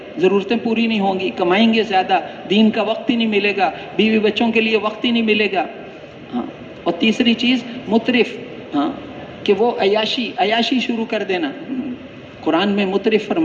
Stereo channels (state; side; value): identical; both; correlation 1.00